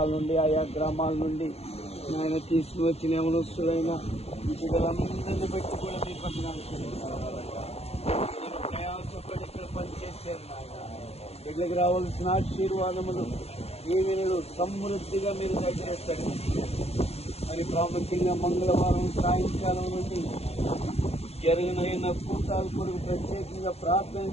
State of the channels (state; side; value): late; right; 0.30 ms